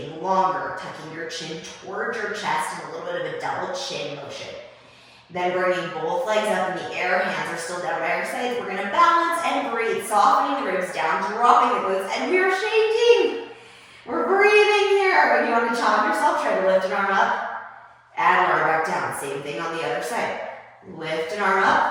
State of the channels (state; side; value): identical; both; correlation 1.00